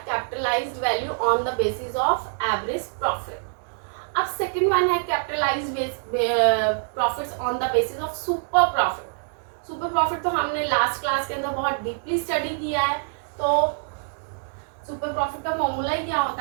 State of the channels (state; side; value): silent; left; digital silence